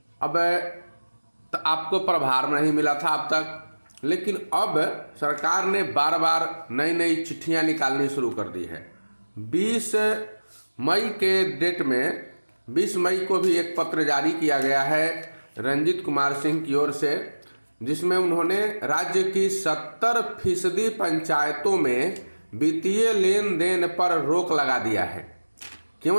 अब आपको प्रभार नहीं मिला था अब तक, लेकिन अब सरकार ने बार बार नई नई चिट्ठियां निकालनी शुरू कर दी है। 20 मई के डेट में 20 मई को भी एक पत्र जारी किया गया है रंजीत कुमार सिंह की ओर से, जिसमें उन्होंने राज्य की 70% पंचायतों में वित्तीय लेन देन पर रोक लगा दिया है। क्यों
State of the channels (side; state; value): both; inverted; correlation -1.00